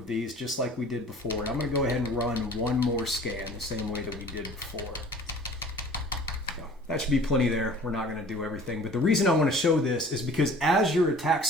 these just like we did before. And I'm going to go ahead and run one more scan the same way that we did before. So that should be plenty there. We're not going to do everything. But the reason I want to show this is because as your attack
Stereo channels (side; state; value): both; normal; correlation 0.48